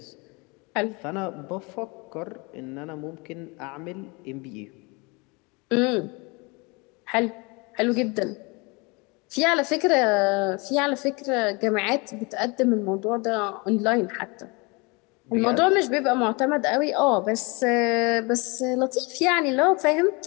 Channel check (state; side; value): quieter; right; 28.3 dB